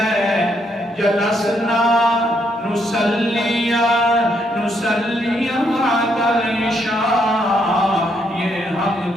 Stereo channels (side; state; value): both; normal; correlation 0.75